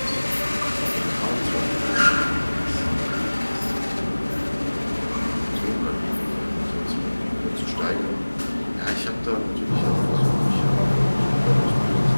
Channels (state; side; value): inverted; both; correlation -1.00